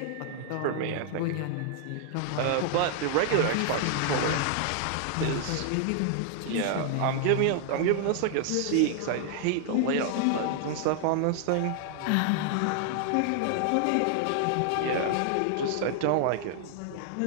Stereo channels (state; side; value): different; both; correlation 0.00